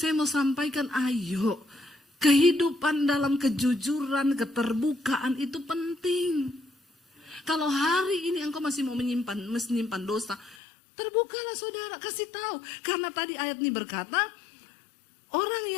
mau sampaikan, ayo, kehidupan dalam kejujuran, keterbukaan itu penting. Kalau hari ini engkau masih mau menyimpan dosa, terbukalah saudara, kasih tahu. Karena tadi ayat ini berkata, orang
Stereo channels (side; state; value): right; drops out; at 10.6 s